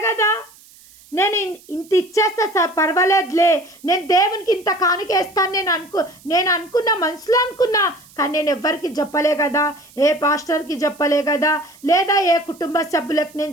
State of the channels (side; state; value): right; noise; hiss, 25 dB below the sound